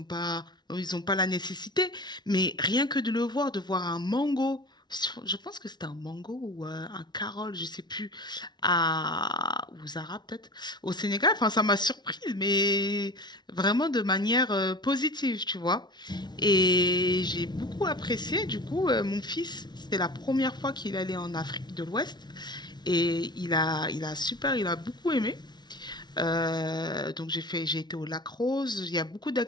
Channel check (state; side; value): late; right; 0.20 ms